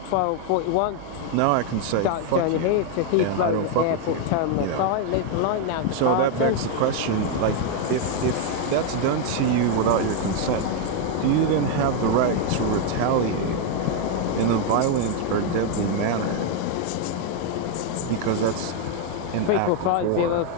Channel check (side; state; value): both; different; correlation 0.01